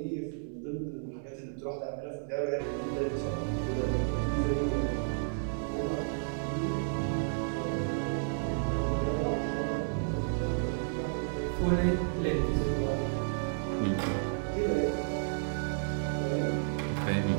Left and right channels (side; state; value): left; silent; 56 dB below the other